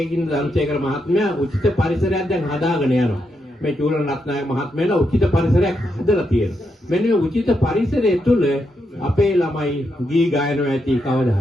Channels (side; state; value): both; normal; correlation 0.82